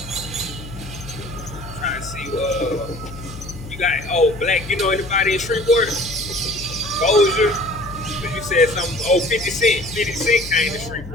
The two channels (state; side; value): noise; left; hum, 13 dB below the sound